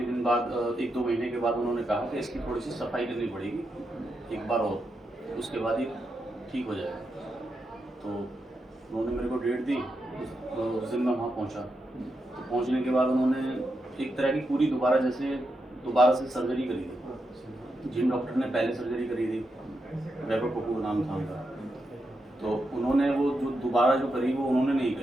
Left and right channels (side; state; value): both; normal; correlation 0.85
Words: दिन बाद 1-2 महीने के बाद उन्होंने कहा कि इसकी थोड़ी सी सफाई करनी पड़ेगी एक बार और, उसके बाद ये ठीक हो जाएगा। तो उन्होंने मेरे को डेट दी, उस दिन मैं वहाँ पहुँचा। तो पहुँचने के बाद उन्होंने एक तरह की पूरी दोबारा से सर्जरी करी थी। जिन डॉक्टर ने पहले सर्जरी करी थी, वैभव कपूर नाम था उनका, तो उन्होंने वो जो दोबारा जो करी वो उन्होंने नहीं